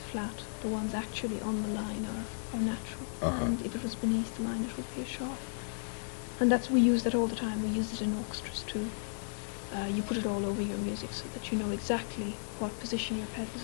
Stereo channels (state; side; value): silent; right; 55 dB below the other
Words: flat. The ones actually on the line are natural, and if it was beneath the line, it would be a sharp. And we use that all the time. We use it in orchestras too. You put it all over your music so that you know exactly what position your pedals